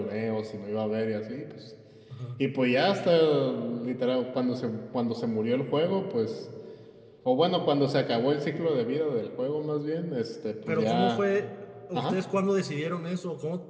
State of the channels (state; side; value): identical; both; correlation 1.00